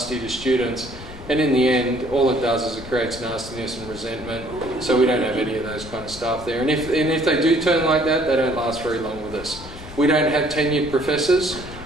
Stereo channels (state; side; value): noise; left; rumble, 15 dB below the sound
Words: to students. And in the end, all it does is it creates nastiness and resentment. So we don't have any of those kind of staff there. And if they do turn like that, they don't last very long with us. We don't have tenured professors.